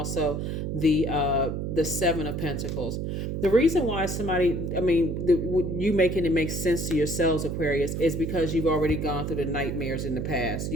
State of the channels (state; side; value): noise; right; hum, 3 dB below the sound